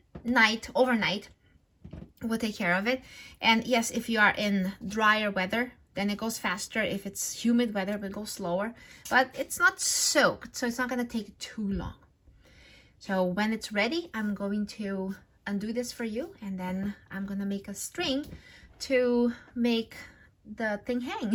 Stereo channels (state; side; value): identical; both; correlation 1.00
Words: night, overnight, will take care of it. And yes, if you are in drier weather, then it goes faster. If it's humid weather, it will go slower, but it's not soaked, so it's not going to take too long. So when it's ready, I'm going to undo this for you, and then I'm going to make a string to make the thing